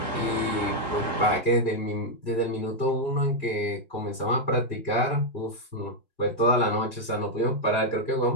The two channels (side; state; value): right; late; 1.7 ms